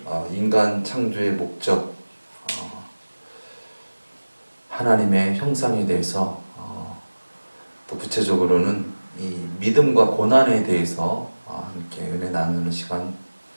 인간 창조의 목적 하나님의 형상에 대해서 또 구체적으로는 이 믿음과 고난에 대해서 함께 은혜 나누는 시간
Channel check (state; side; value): inverted; both; correlation -1.00